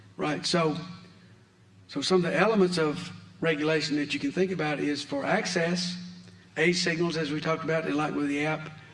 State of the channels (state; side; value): identical; both; correlation 1.00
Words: right? So some of the elements of regulation that you can think about is for access, age signals, as we talked about, and like with the